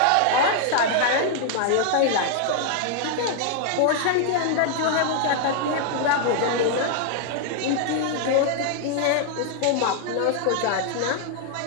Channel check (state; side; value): different; both; correlation 0.00